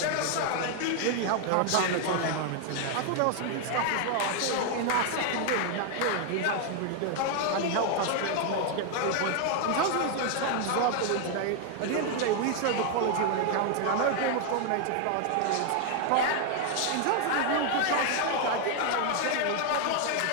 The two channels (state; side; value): different; both; correlation 0.00